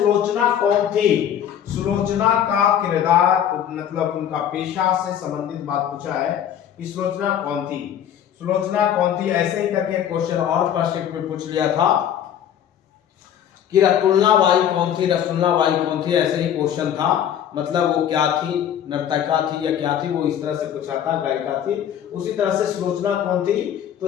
कौन थी? सुलोचना का किरदार मतलब उनका पेशा से संबंधित बात पूछा है कि सुलोचना कौन थी? सुलोचना कौन थी? ऐसे ही करके क्वेश्चन और फर्स्ट में पूछ लिया था कि रसुल्लाबाई कौन थी? रसुल्लाबाई कौन थी? ऐसे ही क्वेश्चन था, मतलब वो क्या थी, नर्तका थी या क्या थी, वो इस तरह से पूछा था, गायिका थी। उसी तरह से सुलोचना कौन थी? तो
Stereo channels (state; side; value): quieter; right; 9.7 dB